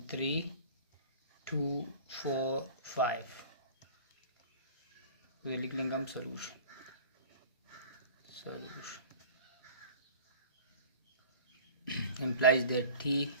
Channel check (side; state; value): both; inverted; correlation -0.42